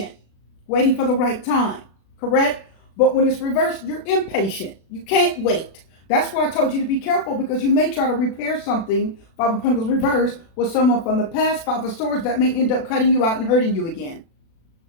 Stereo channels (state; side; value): late; right; 36 ms